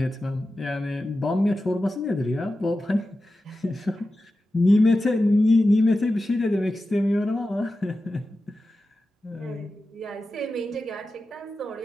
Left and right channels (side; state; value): both; normal; correlation 0.93